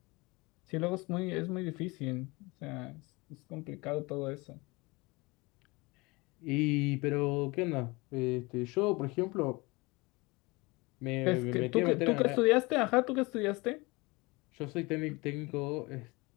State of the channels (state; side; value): quieter; right; 24.6 dB